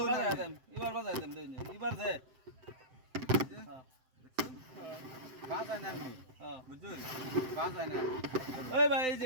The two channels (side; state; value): left; late; 7.7 ms